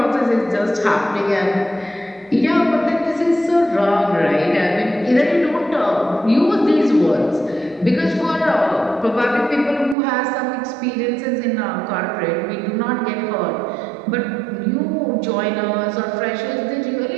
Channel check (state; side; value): drops out; left; at 10.0 s